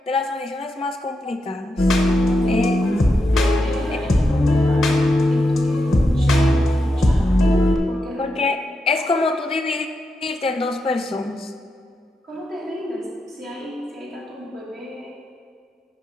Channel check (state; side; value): normal; both; correlation 0.86